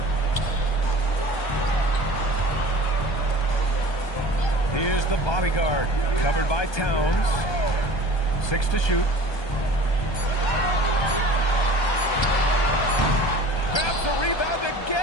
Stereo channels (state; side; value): late; right; 1.2 ms